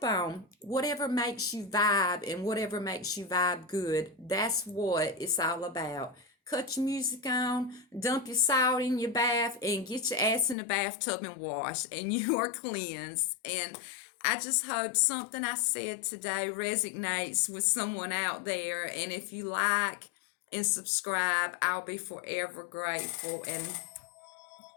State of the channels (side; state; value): right; drops out; at 10.6 s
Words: on. Whatever makes you vibe and whatever makes you vibe good, that's what it's all about. Cut your music on, dump your salt in your bath, and get your ass in the bathtub and wash, and you are cleansed. And I just hope something I said today resonates with someone out there. And if you like and subscribe, I'll be forever grateful. And